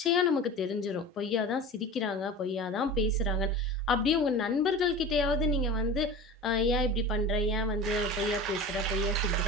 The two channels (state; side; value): normal; both; correlation 0.33